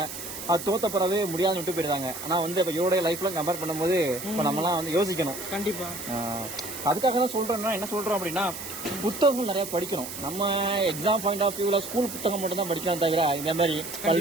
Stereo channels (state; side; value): noise; right; hiss, 9 dB below the sound